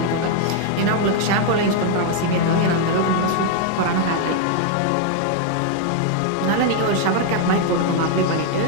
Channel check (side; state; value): both; different; correlation 0.00